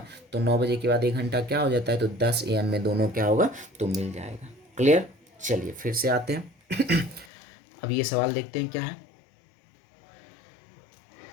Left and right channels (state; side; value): drops out; right; at 7.3 s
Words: तो 9 बजे के बाद 1 घंटा क्या हो जाता है तो 10 AM में दोनों क्या होगा तो मिल जाएगा। क्लियर। चलिए फिर से आते हैं अब ये सवाल देखते हैं क्या है।